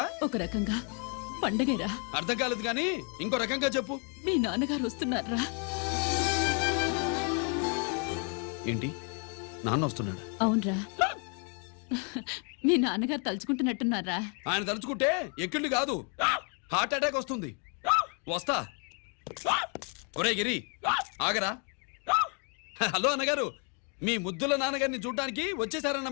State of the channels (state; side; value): quieter; right; 38.9 dB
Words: ఒక రకంగా పండగేరా. అర్థం కాలేదు కానీ ఇంకో రకంగా చెప్పు. మీ నాన్నగారు వస్తున్నారా? ఏంటి, నాన్న వస్తున్నాడు? అవునరా, మీ నాన్నగారు తలుచుకుంటున్నట్టున్నారా? ఆయన తలుచుకుంటే ఎక్కిళ్ళు కాదు, హార్ట్ అటాక్ వస్తుంది. వస్తా. ఒరే గిరి, ఆగరా. హలో అన్నగారు, మీ ముద్దుల నాన్నగారిని చూడ్డానికి